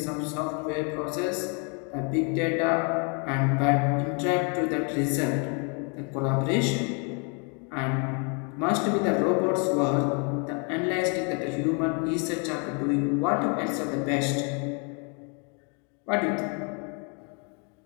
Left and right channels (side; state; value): right; quieter; 36.6 dB